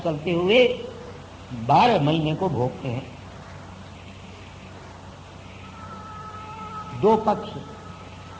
चलते हुए 12 महीने को भोगते हैं। 2 पक्ष,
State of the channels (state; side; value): identical; both; correlation 1.00